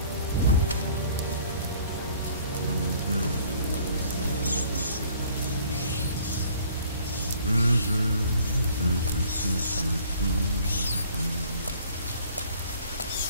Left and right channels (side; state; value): both; inverted; correlation -0.55